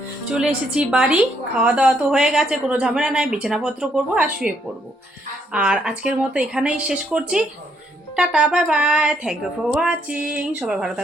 চলে এসেছি বাড়ি, খাওয়া দাওয়া তো হয়ে গেছে, কোনো ঝামেলা নাই, বিছানাপত্র করবো আর শুয়ে পড়বো। আর আজকের মতো এখানেই শেষ করছি। Tata, bye bye, thank you for watching. সবাই ভালো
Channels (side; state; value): both; normal; correlation 0.72